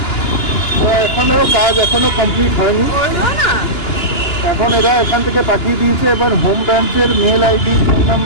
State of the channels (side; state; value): right; late; 2.9 ms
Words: এখনো কাজ কমপ্লিট হয়নি। এখন এরা এখান থেকে পাঠিয়ে দিয়েছে, এবার হোম ব্রাঞ্চের মেল আইডি ফোন